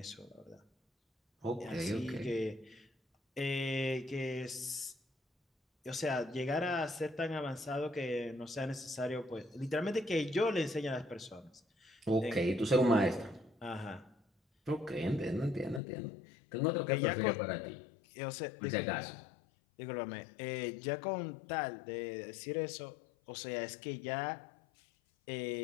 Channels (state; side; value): drops out; right; at 15.8 s